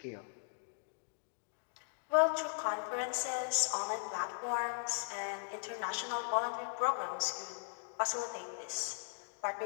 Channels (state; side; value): silent; right; digital silence